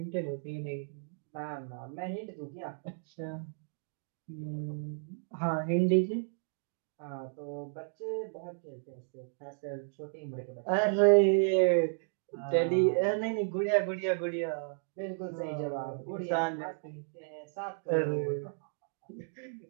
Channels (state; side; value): silent; left; digital silence